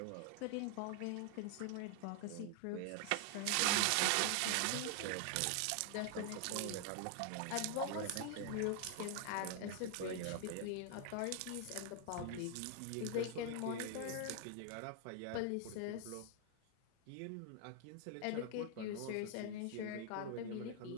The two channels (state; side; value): different; both; correlation 0.00